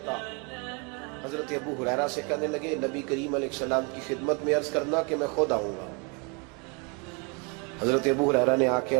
حضرت ابو ہریرہ سے کہنے لگے نبی کریم علیہ السلام کی خدمت میں عرض کرنا کہ میں خود آؤں گا۔ حضرت ابو ہریرہ نے آ کے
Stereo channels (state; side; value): quieter; left; 32.4 dB